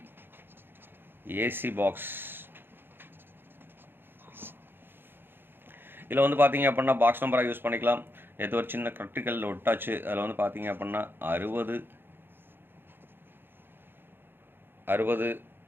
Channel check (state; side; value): late; left; 0.10 ms